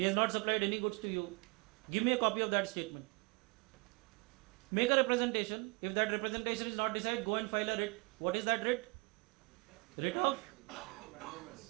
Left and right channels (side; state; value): left; quieter; 29.2 dB